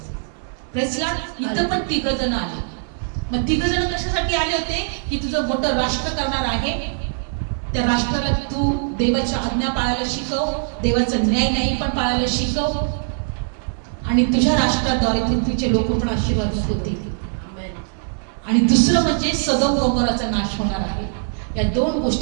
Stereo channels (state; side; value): silent; left; 65 dB below the other